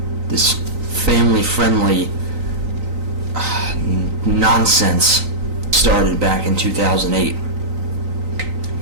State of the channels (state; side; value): late; left; 3.9 ms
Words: this family-friendly nonsense started back in 2008.